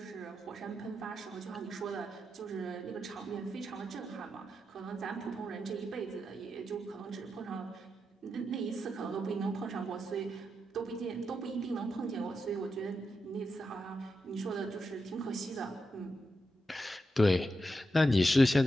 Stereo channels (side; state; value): both; normal; correlation 0.86